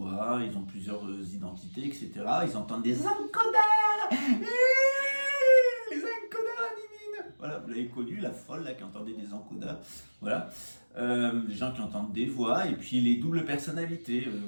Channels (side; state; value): both; inverted; correlation -1.00